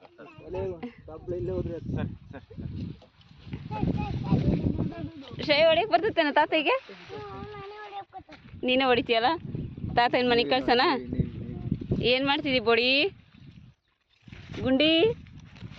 ಶ್ರೇಯ ಹೊಡಿಯಕ್ ಬರ್ತೇನ ತಾತಗೆ ನೀನೇ ಹೊಡಿತೀಯಲ್ಲ ತಾತ ಏನ್ ಮನೆ ಕಳ್ಸನ ಏನ್ ಮಾಡ್ತಿದ್ದಿ ಬೊಡಿ ಗುಂಡಿ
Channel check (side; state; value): both; identical; correlation 1.00